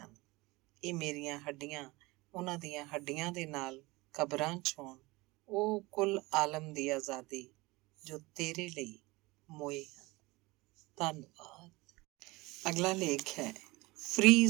ਹਨ। ਇਹ ਮੇਰੀਆਂ ਹੱਡੀਆਂ ਉਹਨਾਂ ਦੀਆਂ ਹੱਡੀਆਂ ਦੇ ਨਾਲ ਕਬਰਾਂ 'ਚ ਹੋਣ, ਉਹ ਕੁੱਲ ਆਲਮ ਦੀ ਆਜ਼ਾਦੀ ਜੋ ਤੇਰੇ ਲਈ ਮੋਏ ਹਨ। ਧੰਨਵਾਦ। ਅਗਲਾ ਲੇਖ ਹੈ ਫ੍ਰੀ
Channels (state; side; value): quieter; left; 22.5 dB